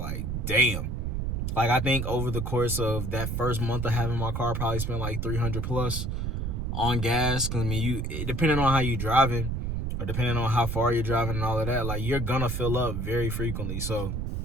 damn. Like I think over the course of that first month of having my car, I probably spent like 300 plus on gas. Cause I mean, depending on how you driving, or depending on how far you're driving and all of that, like you're gonna fill up very frequently. So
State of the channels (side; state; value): right; noise; rumble, 2 dB below the sound